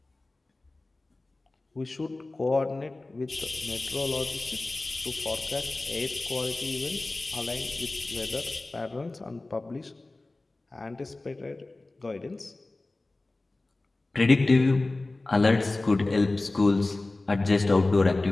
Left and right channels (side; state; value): right; quieter; 3.0 dB